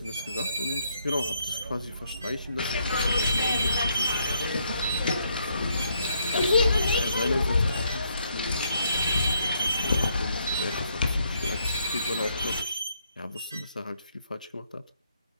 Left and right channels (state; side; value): inverted; both; correlation -0.74